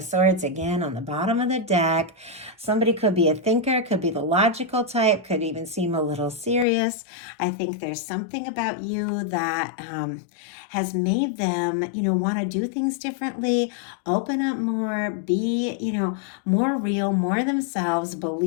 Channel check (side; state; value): right; drops out; at 6.7 s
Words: Swords again on the bottom of the deck. Somebody could be a thinker, could be the logical type, could even seem a little serious. I think there's something about you that has made them, you know, want to do things differently, open up more, be, you know, more real, more themselves,